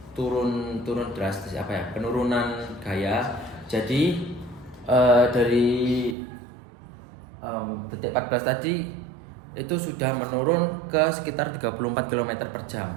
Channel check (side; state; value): left; drops out; at 6.2 s